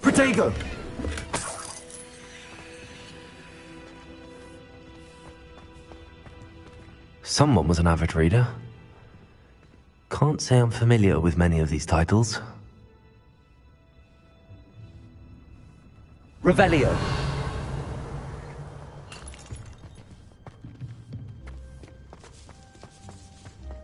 Protego! Someone was an avid reader. Can't say I'm familiar with many of these titles. Revelio!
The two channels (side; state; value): both; identical; correlation 1.00